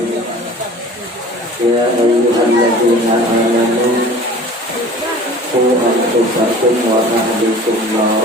Ya ayyuhalladzina amanu qu anfusakum wa ahlikum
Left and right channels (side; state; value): both; normal; correlation 0.44